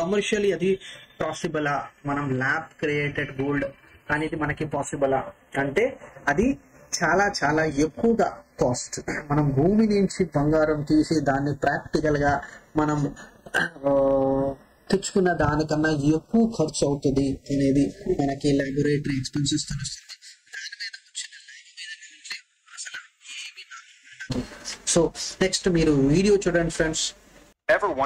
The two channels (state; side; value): identical; both; correlation 1.00